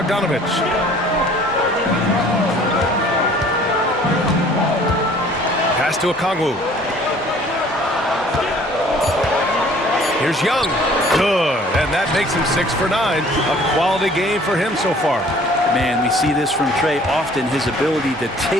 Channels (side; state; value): both; normal; correlation 0.53